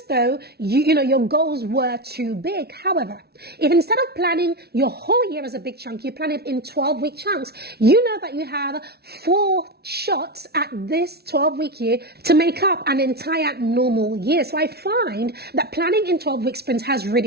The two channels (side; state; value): left; late; 0.46 ms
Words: though your goals were too big. However, if instead of planning your whole year as a big chunk, you plan it in 12-week chunks, you know that you have 4 shots at this 12-week year to make up an entire normal year. So I find that planning in 12-week sprints has